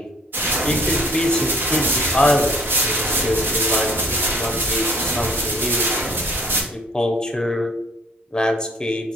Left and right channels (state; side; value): normal; both; correlation 0.56